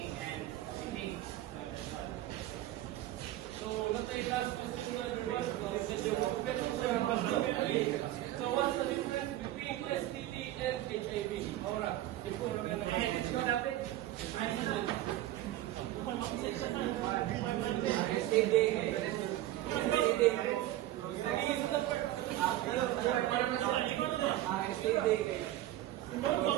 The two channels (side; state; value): left; quieter; 14.6 dB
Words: and sitting. So, let's say last question to everyone. So, what's the difference between STD and HIV? Alright.